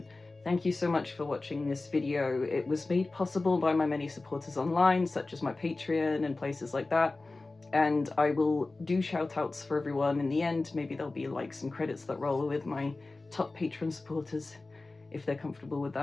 Thank you so much for watching this video. It was made possible by my many supporters online, such as my Patreon and places like that. And I will do shout outs for everyone in the end. Maybe there'll be like some credits that roll with my top patron supporters, if they're comfortable with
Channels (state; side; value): quieter; right; 3.3 dB